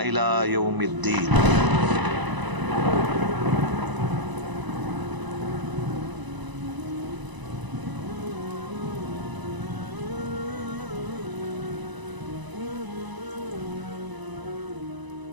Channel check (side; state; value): left; late; 1.0 ms